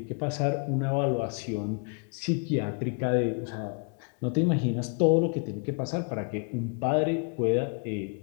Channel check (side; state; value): right; quieter; 37.1 dB